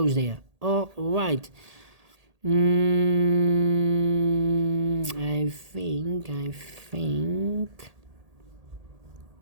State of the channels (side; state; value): left; late; 1.8 ms